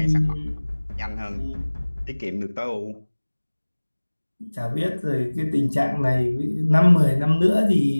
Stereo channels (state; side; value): inverted; both; correlation -1.00